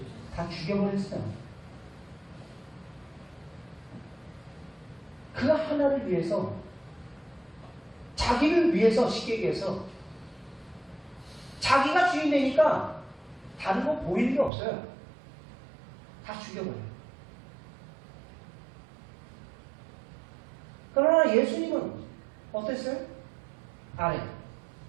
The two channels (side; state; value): left; drops out; at 14.5 s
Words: 다 죽여버렸어요. 그 하나를 위해서, 자기를 위해서, 쉽게 얘기해서 자기가 주인 되니까 다른 거 보이는 게 없어요. 다 죽여버려요. 그러나 예수님은 어땠어요? 아래.